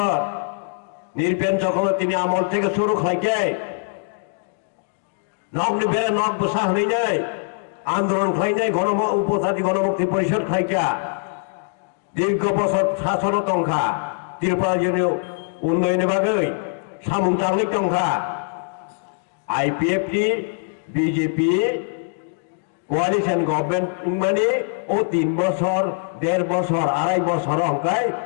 নির্পেন চক্রবর্তী আমল থেকে শুরু খাইকে নগ্নি বেড়ে নখ বসা হইনাই আন্দোলন খাইনাই উপজাতি গণমুক্তি পরিষদ খাইকা দীর্ঘ বছর শাসন টংখা ত্রিপুরা জেনে উন্নয়নের বাগৈ সামুং টাংলিক টংখা আইপিএফটি বিজেপি কোয়ালিশন গভর্নমেন্ট মানে ও 3 বছর 1.5 বছর 2.5 বছর অঙ্কায়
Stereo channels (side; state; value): right; silent; 64 dB below the other